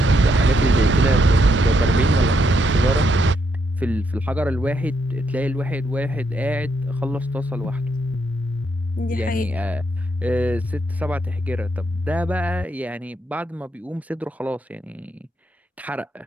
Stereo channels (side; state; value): both; normal; correlation 0.77